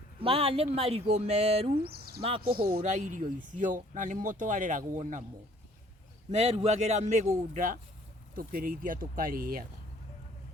Maya nĩ marigũ meru ma kũhũra irio icio, na nĩmo twareragwo namo. Meruagĩra mĩgũnda, tũkĩrĩithia tũkarĩaga.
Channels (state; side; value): normal; both; correlation 0.57